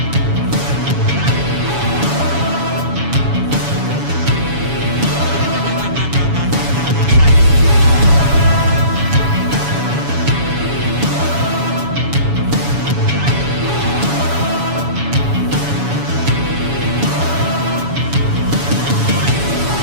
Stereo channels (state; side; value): late; left; 7.1 ms